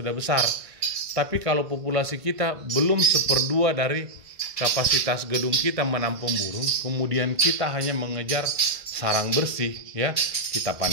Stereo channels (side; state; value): left; late; 1.6 ms